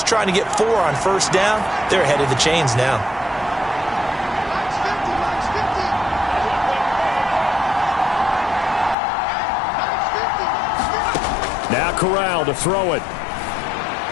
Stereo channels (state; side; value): drops out; right; at 9.0 s